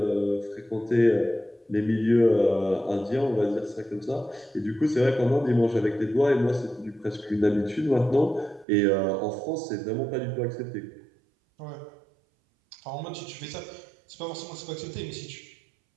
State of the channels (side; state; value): left; drops out; at 8.7 s